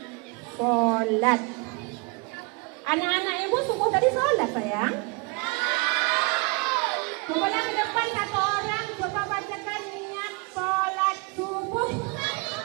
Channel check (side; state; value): left; quieter; 29.2 dB